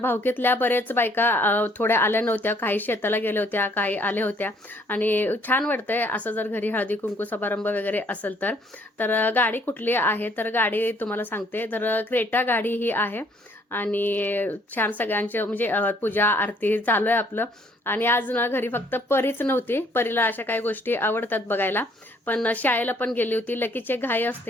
बरेच बायका थोड्या आल्या नव्हत्या, काही शेताला गेल्या होत्या, काही आल्या होत्या, आणि छान वाटतंय असं जर घरी हळदी कुंकू समारंभ वगैरे असेल तर. तर गाडी कुठली आहे तर गाडी तुम्हाला सांगते, तर क्रेटा गाडी ही आहे, आणि छान सगळ्यांचे म्हणजे पूजा आरती चालू आहे आपलं. आणि आज ना घरी फक्त परीच नव्हती, परीला अशा काही गोष्टी आवडतात बघायला, पण शाळेला पण गेली होती. लकीचे घाई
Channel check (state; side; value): normal; both; correlation 0.63